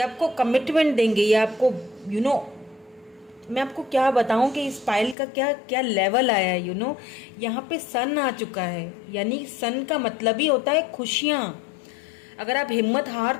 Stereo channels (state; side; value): drops out; right; at 5.2 s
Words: आपको कमिटमेंट देंगे, ये आपको मैं आपको क्या बताऊं कि इस पायल का क्या क्या लेवल आया है। यहाँ पे सन आ चुका है, यानी सन का मतलब ही होता है खुशियां। अगर आप हिम्मत हार